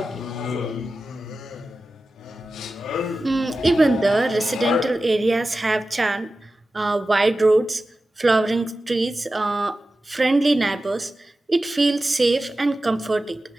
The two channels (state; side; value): normal; both; correlation 0.94